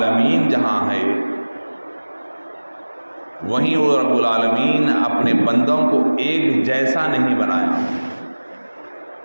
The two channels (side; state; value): both; inverted; correlation -1.00